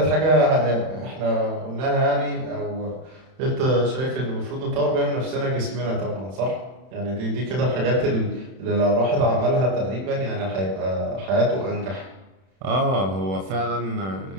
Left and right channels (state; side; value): late; left; 31 ms